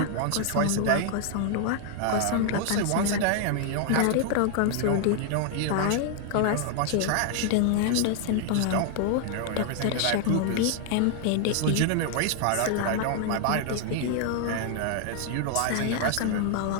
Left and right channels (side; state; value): both; different; correlation 0.00